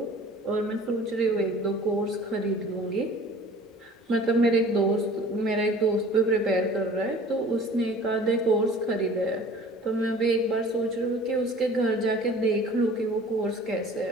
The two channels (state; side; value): normal; both; correlation 0.47